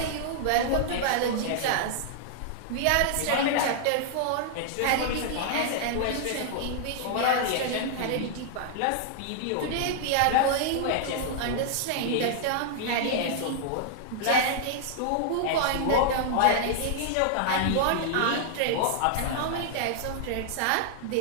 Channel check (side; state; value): both; different; correlation -0.01